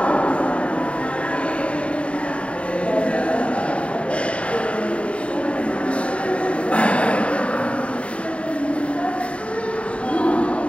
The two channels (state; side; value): late; right; 0.061 ms